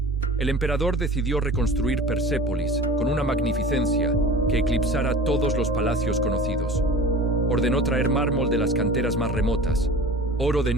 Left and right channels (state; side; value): normal; both; correlation 0.39